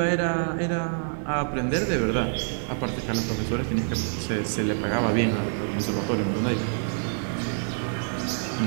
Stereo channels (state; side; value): silent; left; 61 dB below the other